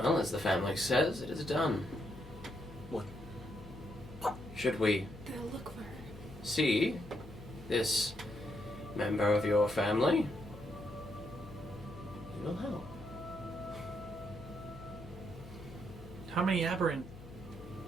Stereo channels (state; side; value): noise; left; hum, 15 dB below the sound